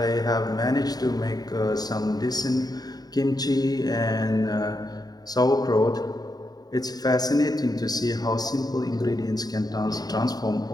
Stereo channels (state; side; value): late; right; 0.19 ms